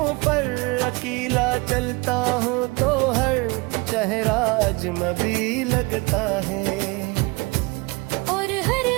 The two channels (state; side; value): quieter; left; 26.3 dB